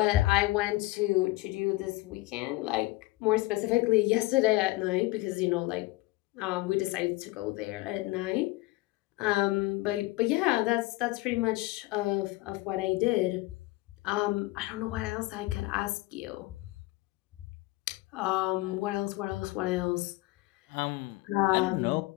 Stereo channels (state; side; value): quieter; right; 19.9 dB